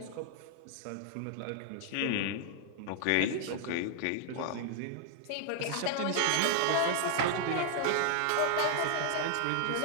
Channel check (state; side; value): different; both; correlation 0.00